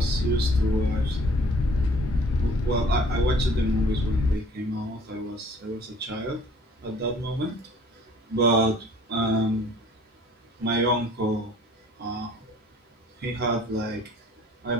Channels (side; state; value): both; normal; correlation 0.53